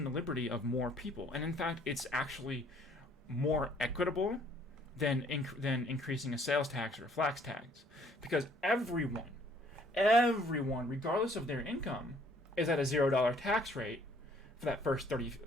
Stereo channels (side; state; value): both; normal; correlation 0.61